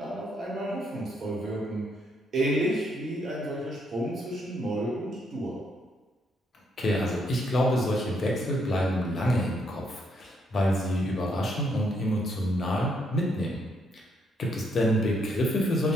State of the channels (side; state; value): both; normal; correlation 0.74